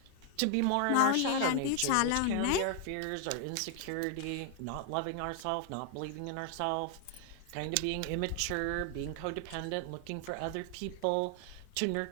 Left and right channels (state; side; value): different; both; correlation 0.00